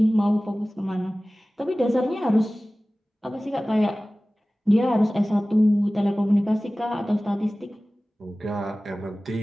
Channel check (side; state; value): both; normal; correlation 0.97